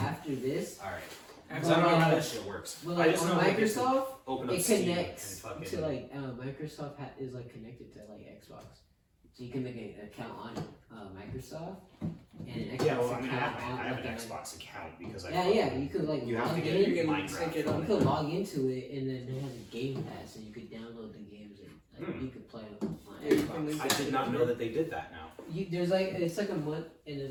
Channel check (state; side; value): identical; both; correlation 1.00